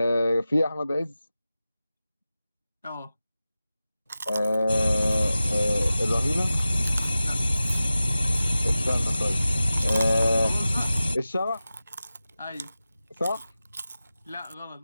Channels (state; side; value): inverted; both; correlation -0.95